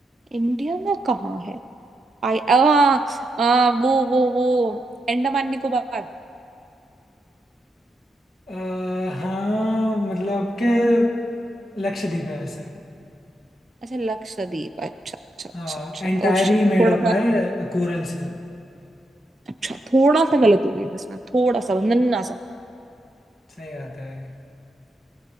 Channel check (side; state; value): both; normal; correlation 0.83